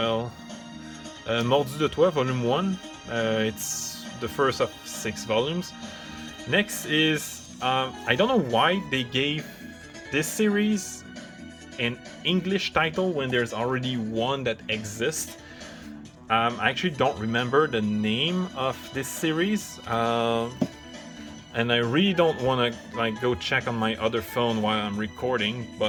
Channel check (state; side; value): identical; both; correlation 1.00